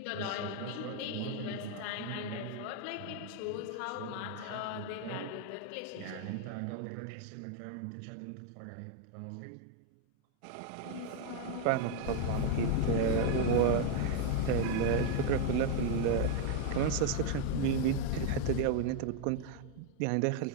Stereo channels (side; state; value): both; different; correlation 0.00